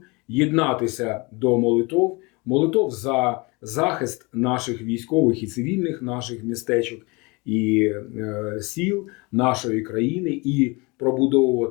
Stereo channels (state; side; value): quieter; right; 27.0 dB